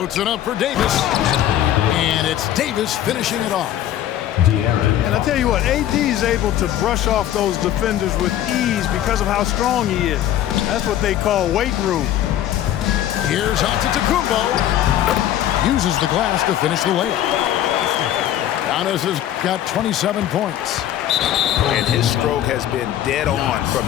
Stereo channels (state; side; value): quieter; right; 11.9 dB